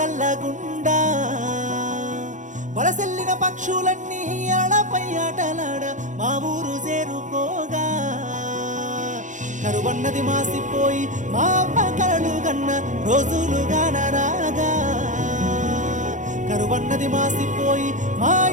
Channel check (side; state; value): left; late; 0.36 ms